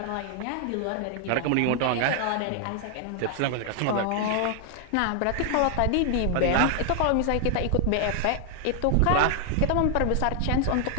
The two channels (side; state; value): both; different; correlation 0.00